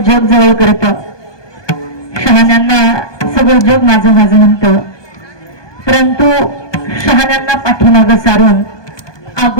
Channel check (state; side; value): late; right; 1.2 ms